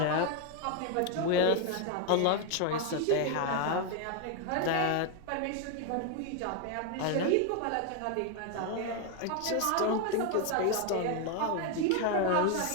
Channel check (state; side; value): different; both; correlation 0.01